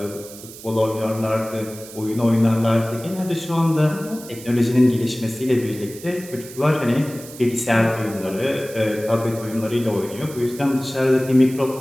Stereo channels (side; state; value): right; noise; hiss, 16 dB below the sound